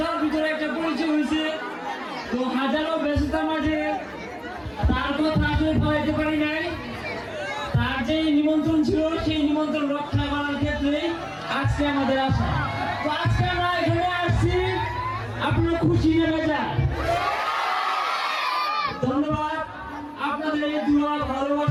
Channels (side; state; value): both; identical; correlation 1.00